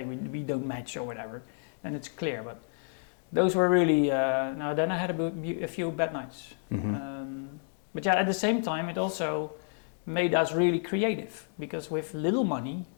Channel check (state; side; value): silent; right; digital silence